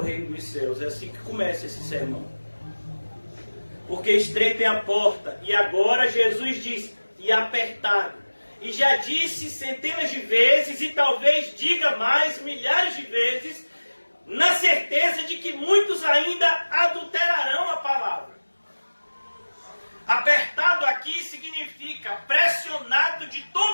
dos céus. É assim que começa esse sermão. Porque estreita é a porta. E agora Jesus diz, e apertado. E já disse centenas de vezes, e talvez diga mais, milhares de vezes, na certeza de que muitos ainda adulterarão a palavra. Apertado aqui significa pressionado de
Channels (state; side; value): inverted; both; correlation -1.00